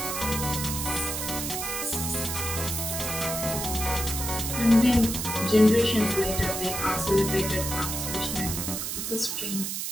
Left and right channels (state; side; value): noise; right; hiss, 3 dB below the sound